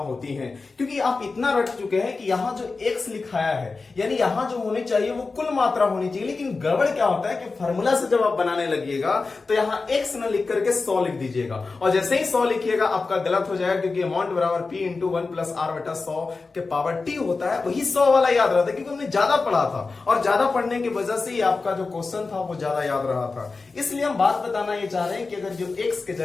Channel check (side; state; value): right; quieter; 4.0 dB